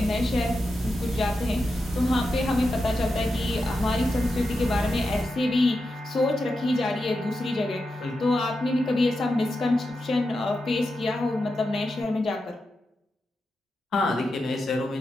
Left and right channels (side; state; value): both; normal; correlation 0.89